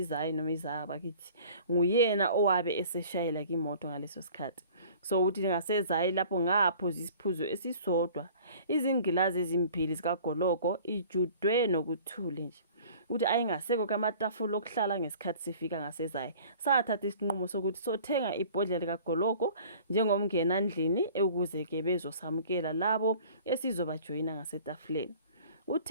bakithi nguyena owabe eseshayela ke imoto ngaleso sikhathi. So uthi ngaseZayi lapho ngaphuza isiphuzo esisodwa. Izingilazi ezimbili zikaGoloko ijudwe nokuthule nje. Uthi ayingaseko kamatafula okuhlala ngesikhathi sifika ngaseZayi. Sathatha isinqumo sokuthi sothenga ibhodlela likaGoloko njengomngena ndlini ukuze ke bezosamukela labo esizobajoyina ngasetafuleni.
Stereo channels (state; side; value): inverted; both; correlation -0.48